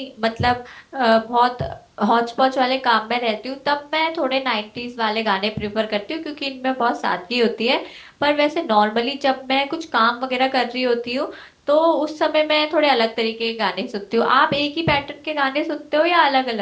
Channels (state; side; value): identical; both; correlation 1.00